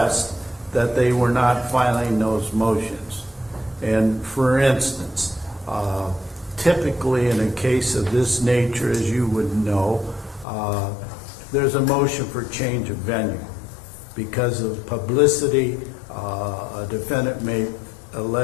that they were not filing those motions. And for instance, typically in a case of this nature, as you would know, there's a motion for change of venue. Because of publicity, a defendant may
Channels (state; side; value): drops out; right; at 10.5 s